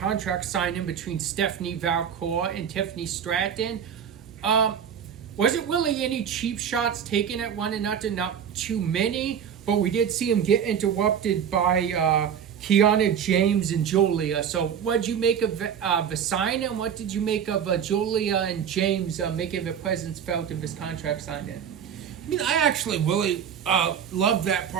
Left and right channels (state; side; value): quieter; left; 8.1 dB